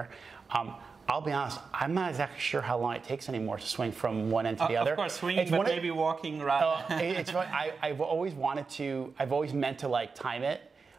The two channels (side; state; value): left; quieter; 4.8 dB